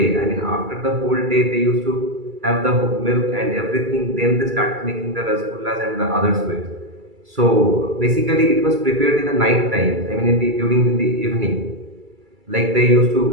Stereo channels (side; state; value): left; late; 2.3 ms